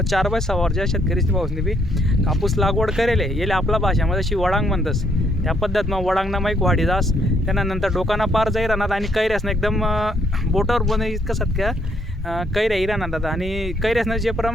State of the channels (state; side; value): normal; both; correlation 0.71